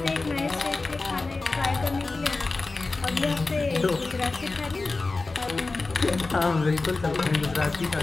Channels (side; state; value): right; quieter; 3.6 dB